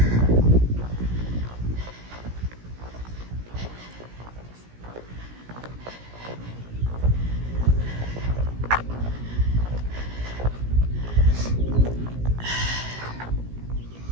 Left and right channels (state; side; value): late; left; 17 ms